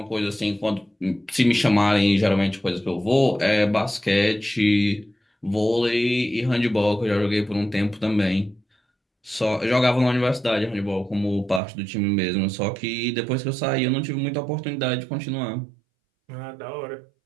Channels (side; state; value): left; drops out; at 11.6 s